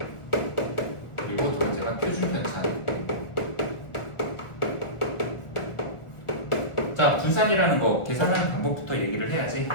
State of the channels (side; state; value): right; late; 1.4 ms